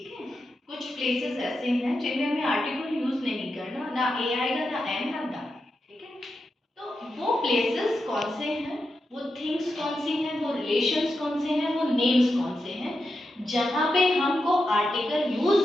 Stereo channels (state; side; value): normal; both; correlation 0.88